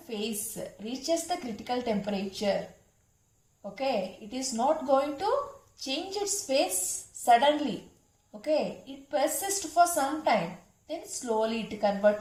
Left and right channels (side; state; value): both; identical; correlation 1.00